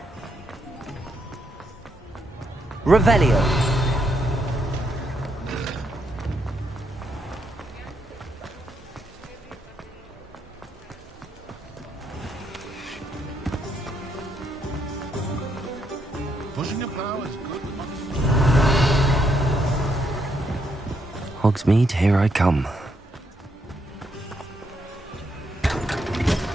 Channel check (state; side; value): normal; both; correlation 0.77